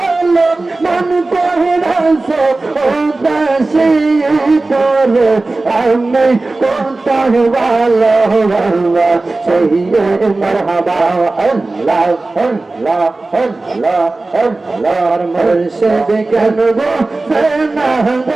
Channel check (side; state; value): left; quieter; 3.2 dB